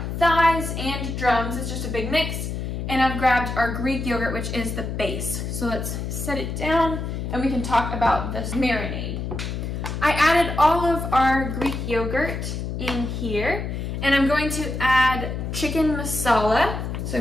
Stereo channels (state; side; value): noise; left; hum, 4 dB below the sound